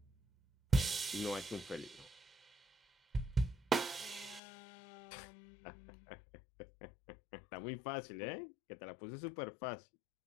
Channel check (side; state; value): right; drops out; at 4.4 s